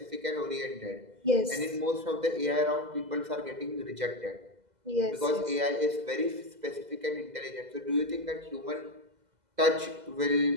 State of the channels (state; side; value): late; left; 2.0 ms